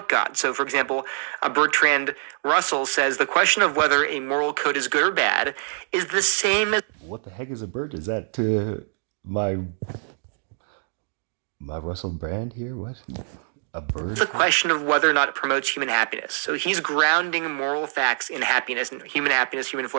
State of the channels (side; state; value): left; silent; digital silence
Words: God. So, for example, Bertrand Russell says the question of whether a moral code is good or bad is the same as... What the heck is a bird? Is that to my Russell Brand here? What? A bird? The question of whether or not it promotes human happiness. So he's grounding moral facts in happiness, human